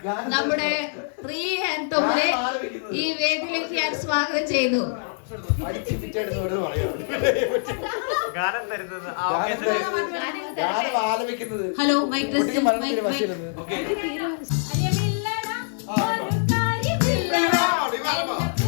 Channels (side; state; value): right; silent; 62 dB below the other